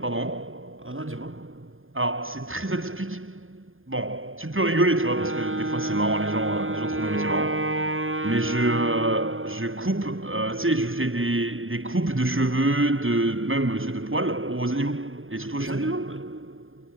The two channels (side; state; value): left; late; 0.59 ms